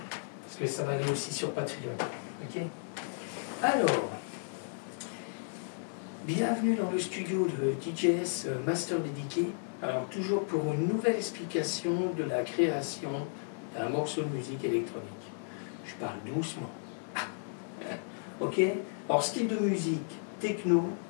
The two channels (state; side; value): silent; right; 55 dB below the other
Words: Parce que ça va aller aussi sur Patreon. Ok ? Alors, bienvenue dans le studio de DJS Master Dédié. Alors, toujours pour une nouvelle explication de la création d'un morceau de musique électronique. Je parle doucement. Ok ? Alors, style de musique, techno,